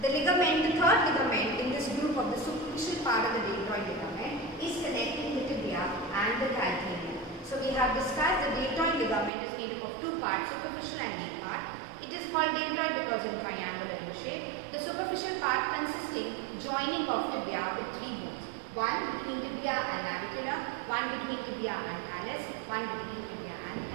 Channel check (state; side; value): drops out; left; at 9.3 s